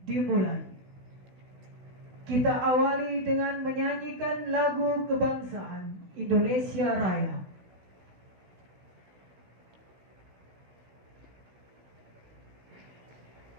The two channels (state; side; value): late; left; 16 ms